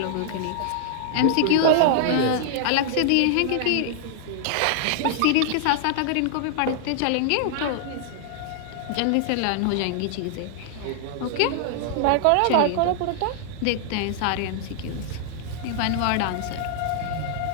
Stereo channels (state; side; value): different; both; correlation -0.01